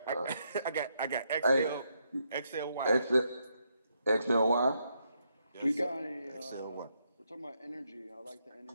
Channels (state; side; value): inverted; both; correlation -0.78